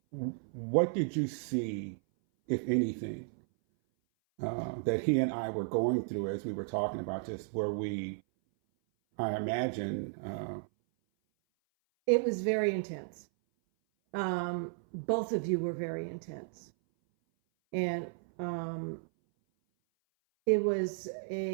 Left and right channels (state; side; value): silent; left; 55 dB below the other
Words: What did you see, if anything, that he and I were going through as we were talking about this, where I imagine, It was very intense. Both of you were very intense. And it was